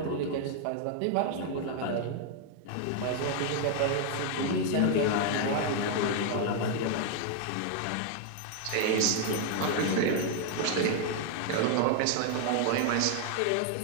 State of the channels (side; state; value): both; different; correlation 0.00